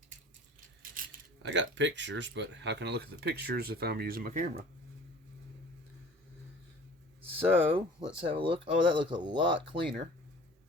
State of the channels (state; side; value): normal; both; correlation 0.46